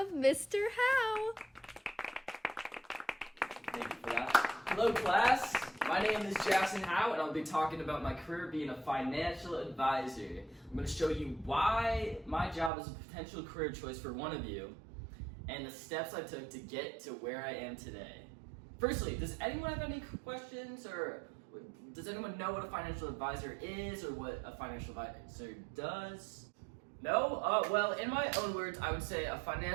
Mr. Howe. Thank you for that. Hello, class. My name is Jackson Howe, and I'll be talking about my career being a financial advisor. I'm going to show you why my job is a potential career choice for one of you, and the steps I took to get to where I am today. Firstly, does anyone have any questions, or does anyone know what a financial advisor is, or what a financial advisor does? No? Well, in my own words, I would say a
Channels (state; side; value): drops out; left; at 12.7 s